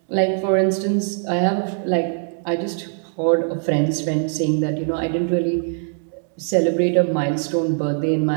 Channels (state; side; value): silent; left; digital silence